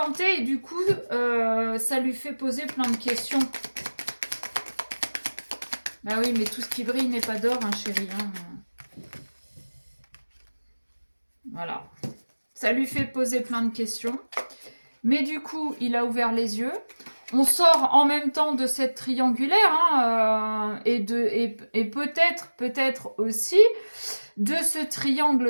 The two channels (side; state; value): both; inverted; correlation -1.00